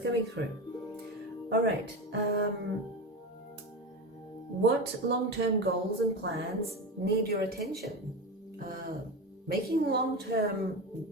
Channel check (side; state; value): both; normal; correlation 0.22